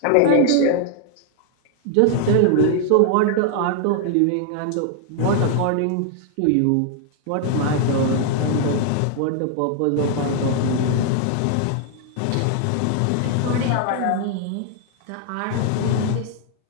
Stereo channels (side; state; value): both; different; correlation 0.00